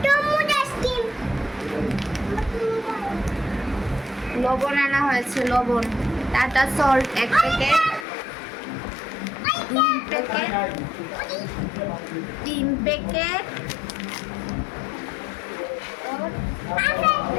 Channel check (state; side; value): drops out; right; at 8.1 s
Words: লবণ আনা হয়েছে, লবণ। Tata salt 1 packet, 2 packet, 3 packet,